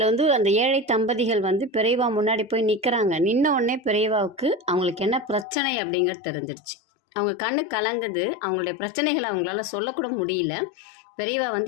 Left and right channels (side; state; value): right; drops out; at 5.5 s